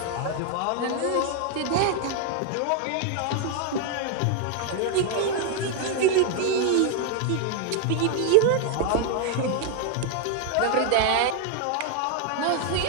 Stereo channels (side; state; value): both; different; correlation 0.00